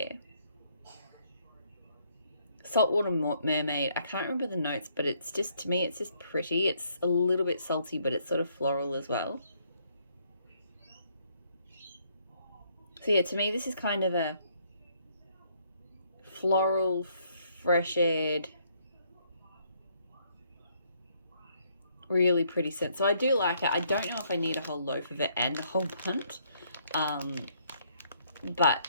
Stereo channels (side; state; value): both; inverted; correlation -0.69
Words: Saltwater Mermaid, I can't remember the notes, but it's just, to me, it's just pretty. It's a little bit salty, but it's sort of floral as well. So yeah, to me, this is kind of a floral, fresh-aired, really pretty scent. So I do like it. I don't know if I need a whole loaf of it and a whole bunch, but